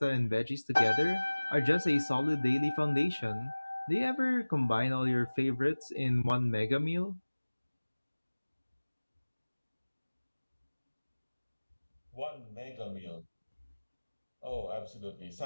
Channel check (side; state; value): both; inverted; correlation -1.00